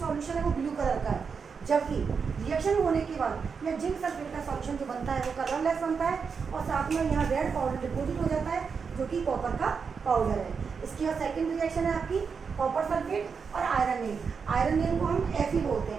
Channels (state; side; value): quieter; left; 5.7 dB